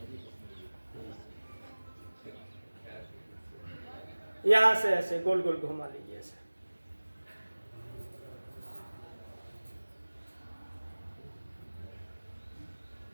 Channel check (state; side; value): inverted; both; correlation -1.00